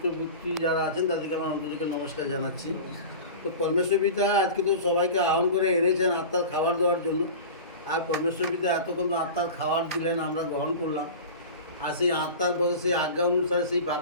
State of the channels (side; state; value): both; inverted; correlation -0.33